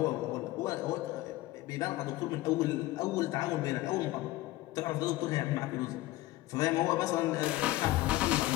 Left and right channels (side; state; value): right; quieter; 17.5 dB